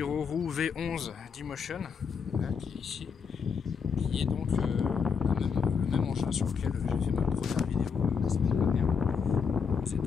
V11 d'Emotion, qui est ici, qui est donc le même engin sur lequel j'ai fait ma première vidéo la semaine dernière. C'est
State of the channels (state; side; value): quieter; right; 6.2 dB